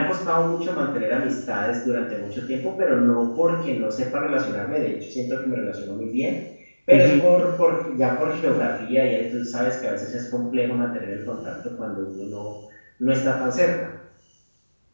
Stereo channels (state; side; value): inverted; both; correlation -1.00